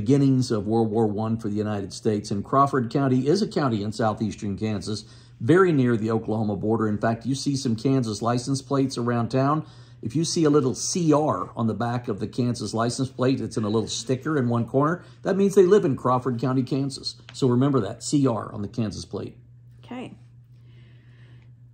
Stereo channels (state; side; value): identical; both; correlation 1.00